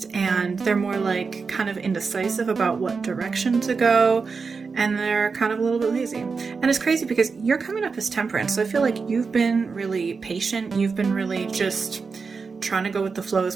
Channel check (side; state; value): left; quieter; 4.9 dB